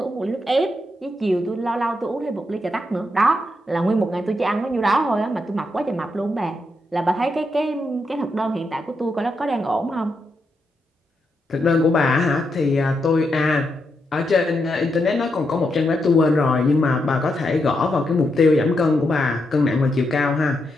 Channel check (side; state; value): both; normal; correlation 0.82